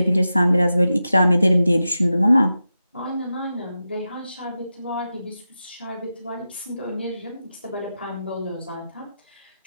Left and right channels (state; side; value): inverted; both; correlation -0.91